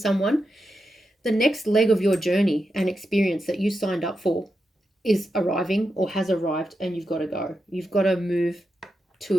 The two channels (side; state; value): both; normal; correlation 0.87